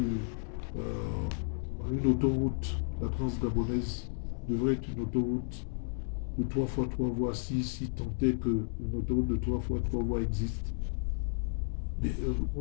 une autoroute. La Transgabonaise devrait être une autoroute de 3 fois 3 voies, si tant est qu'une autoroute de 3 fois 3 voies existe. Mais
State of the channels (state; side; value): silent; right; digital silence